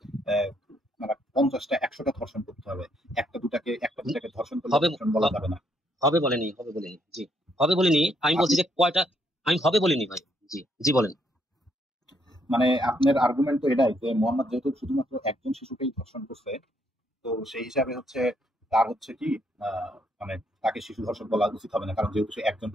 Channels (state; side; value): normal; both; correlation 0.72